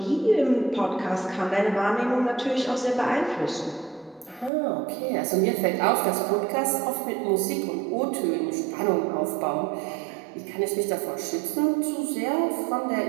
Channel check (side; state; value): left; drops out; at 4.5 s